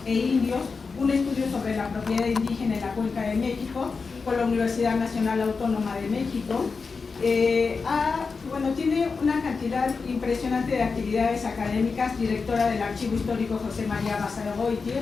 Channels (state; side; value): quieter; right; 4.7 dB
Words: e Indios, un estudio sobre la propiedad indígena en la Cuenca de México, por la Universidad Nacional Autónoma de México. Tiene una cantidad impresionante de actividades académicas, directora del Archivo Histórico José María Basagoiti,